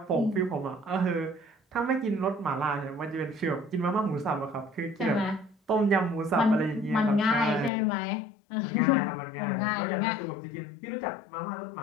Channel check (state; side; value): drops out; right; at 7.7 s